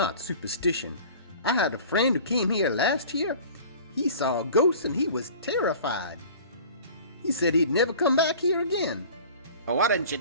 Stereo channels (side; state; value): both; inverted; correlation -0.43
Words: superstition. I had a friend who came here last year. He saw a ghost and he was terrified. He said he'd never come back here again. Well, why didn't you